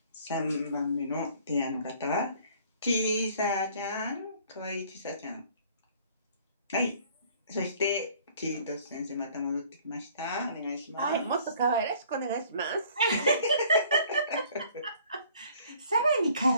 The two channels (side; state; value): both; inverted; correlation -0.56